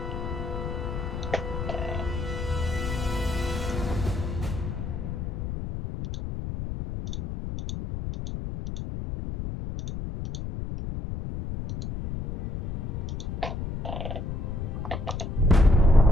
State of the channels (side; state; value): left; noise; rumble, 4 dB below the sound